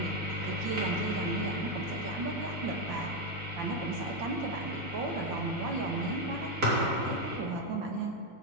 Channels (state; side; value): normal; both; correlation 0.05